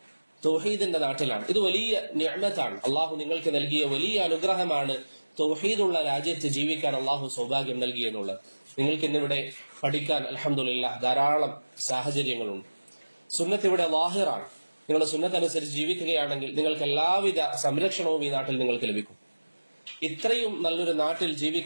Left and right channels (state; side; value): inverted; both; correlation -1.00